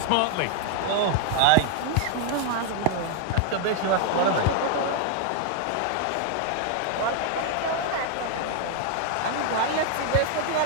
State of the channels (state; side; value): different; both; correlation 0.00